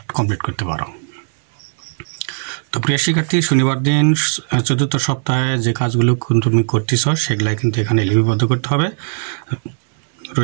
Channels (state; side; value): silent; left; digital silence